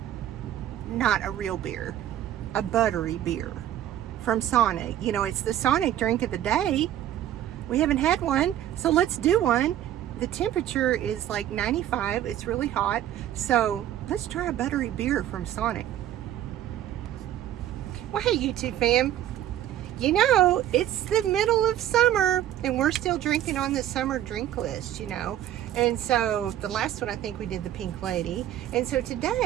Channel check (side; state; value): left; quieter; 12.0 dB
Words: Not a real beer. A buttery beer from Sonic. You know, it's the Sonic drink of the day. We haven't had one, so let's do one. The temperature is like 95. It's really hot. So let's try a buttery beer from Sonic. Well, hey, YouTube fam. You know, it's the middle of summer and we're still drinking on the summer drink list, you know. And so the last one, I think we did the Pink Lady. And so